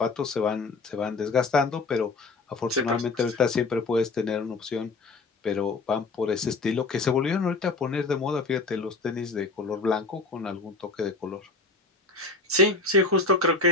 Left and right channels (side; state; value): right; quieter; 3.7 dB